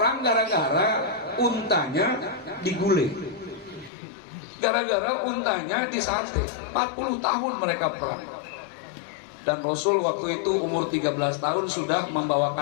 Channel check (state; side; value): drops out; right; at 3.9 s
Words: gara-gara untanya digulai, gara-gara untanya disate. 40 tahun mereka perang. Dan Rasul waktu itu umur 13 tahun sudah